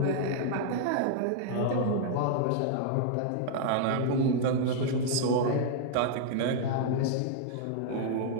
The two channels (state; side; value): different; both; correlation -0.01